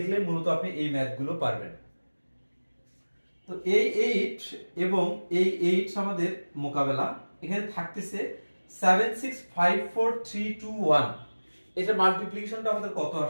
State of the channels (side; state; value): both; inverted; correlation -1.00